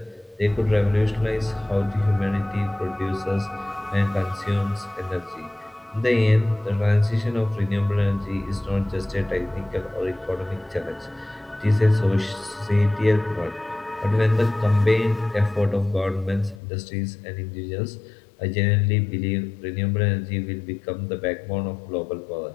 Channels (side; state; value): right; drops out; at 16.6 s